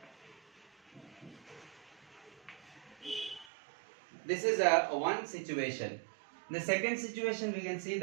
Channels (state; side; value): drops out; left; at 3.5 s